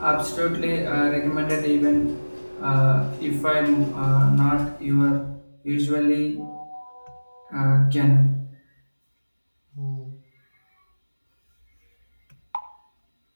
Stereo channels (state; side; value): inverted; both; correlation -1.00